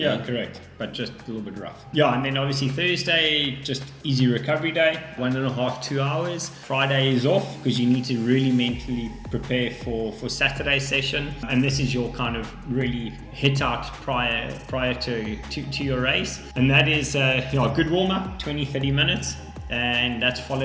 correct. But just a little bit rough. Yeah, and then obviously Thursday, just easy recovery day, 1.5, 2 hours. Friday is off because you need to really mentally prepare for Saturday's session. And this is your kind of really hit out prior to your race. And that is a good warm-up, 20-30 minutes. And that's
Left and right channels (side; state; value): both; identical; correlation 1.00